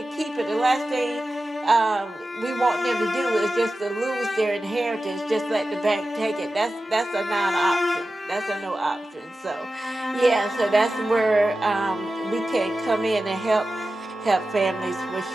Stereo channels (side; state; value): both; normal; correlation 0.93